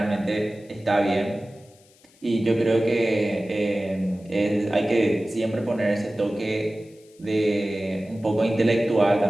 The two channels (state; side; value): noise; left; hiss, 30 dB below the sound